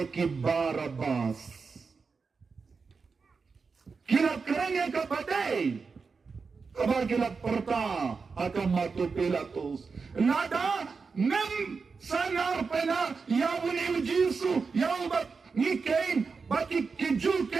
Barabas. Kirap kerengnya kapatay. Kabar kirap parta. Akam matu Pilatus. Nada. Nem sanar pena yawuni ujisu yawbat ni kain baki kiju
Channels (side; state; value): left; quieter; 4.9 dB